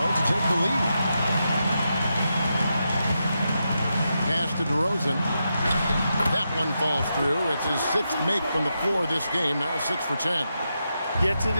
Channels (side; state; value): both; inverted; correlation -0.86